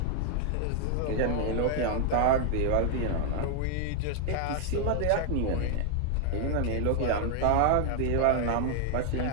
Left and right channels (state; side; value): different; both; correlation 0.00